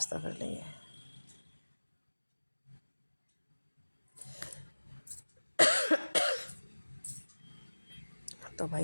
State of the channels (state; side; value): inverted; both; correlation -1.00